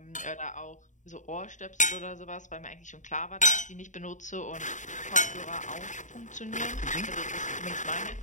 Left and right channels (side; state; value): right; late; 0.36 ms